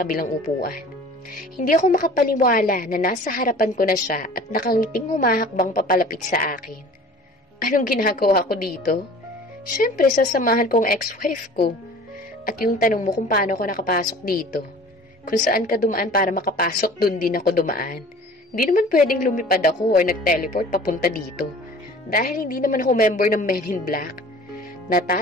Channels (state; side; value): normal; both; correlation 0.45